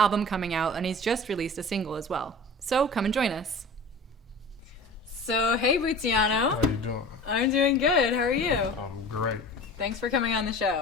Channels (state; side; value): normal; both; correlation 0.38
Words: coming out, and he's just released a single as well. So come and join us. So, hey Bootsyano. How you doing? I'm doing good. How are you? I'm great. Thanks for coming on the